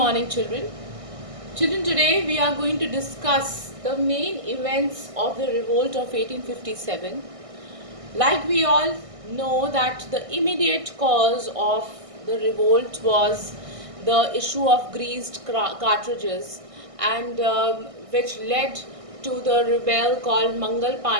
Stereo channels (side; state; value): left; late; 1.6 ms